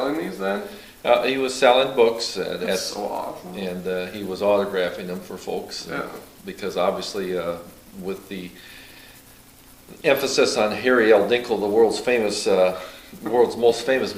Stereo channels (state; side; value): identical; both; correlation 1.00